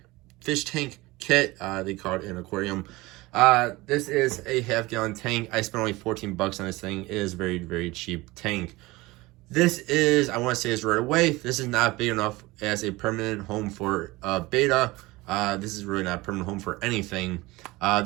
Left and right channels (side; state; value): left; quieter; 20.9 dB